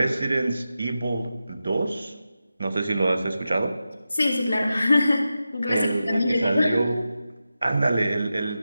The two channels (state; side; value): inverted; both; correlation -0.91